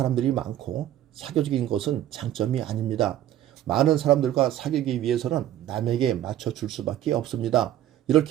많고 사교적인 것은 장점이 아닙니다. 많은 사람들과 사귀기 위해서는 남에게 맞춰줄 수밖에 없습니다.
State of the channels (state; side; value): quieter; left; 12.3 dB